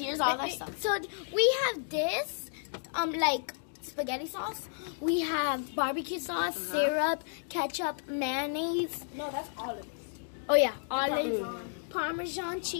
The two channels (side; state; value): right; silent; digital silence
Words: all our stuff. So we have this, like spaghetti sauce. We have barbecue sauce, syrup, ketchup, mayonnaise. No, that's olives. Oh yeah, olive, Parmesan